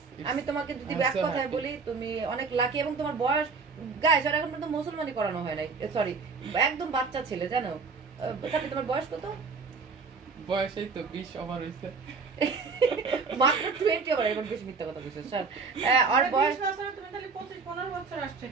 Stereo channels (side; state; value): left; quieter; 4.7 dB